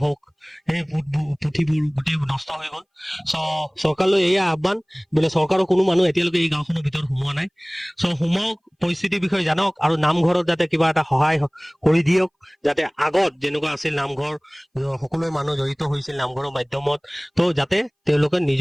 হওক সেই পুথিবোৰ গোটেই নষ্ট হৈ গ'ল চৰকাৰলৈ এয়া আহ্বান বোলে চৰকাৰৰ কোনো মানুহ এতিয়ালৈকে এই গাঁওখনৰ ভিতৰত সোমোৱা নাই সোমাওক পৰিস্থিতিৰ বিষয়ে জানক আৰু নামঘৰত যাতে কিবা এটা সহায় কৰি দিয়ক যাতে আগত যেনেকুৱা আছিল নামঘৰ সকলোৱে মানুহ জড়িত হৈছিল নামঘৰৰ মাধ্যমত তো যাতে তেওঁলোকে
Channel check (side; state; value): both; identical; correlation 1.00